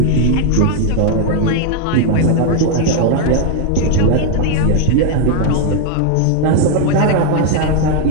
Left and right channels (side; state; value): both; different; correlation 0.00